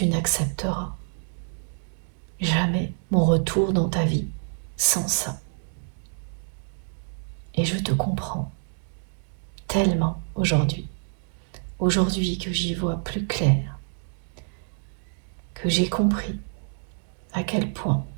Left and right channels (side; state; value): left; silent; digital silence